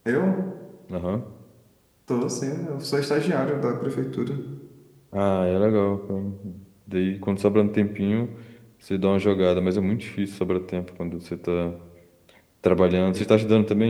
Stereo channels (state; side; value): identical; both; correlation 1.00